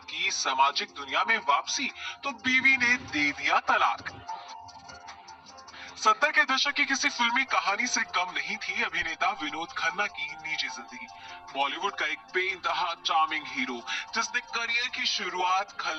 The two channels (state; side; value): identical; both; correlation 1.00